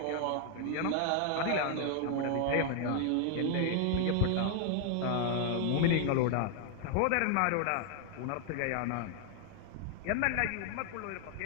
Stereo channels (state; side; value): different; both; correlation 0.00